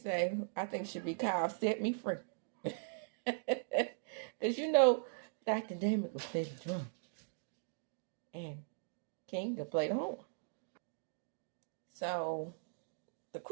I think it should be called Set Me Free. Because Dr. Damon could play the drum. And King could play the horn. So the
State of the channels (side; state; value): left; silent; digital silence